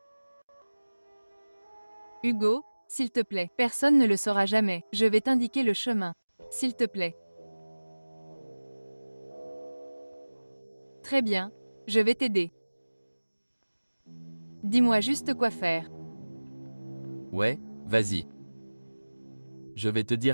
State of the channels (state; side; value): inverted; both; correlation -1.00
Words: Hugo, s'il te plaît. Personne ne le saura jamais. Je vais t'indiquer le chemin. S'il te plaît. Très bien. Je vais t'aider. Dis-moi juste quoi faire. Ouais, vas-y. Je vais te